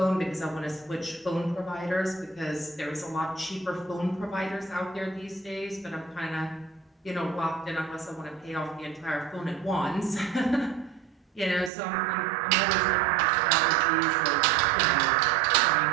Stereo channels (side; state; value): left; drops out; at 11.7 s